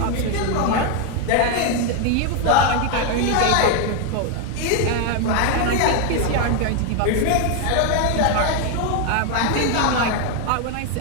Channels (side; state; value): both; different; correlation 0.01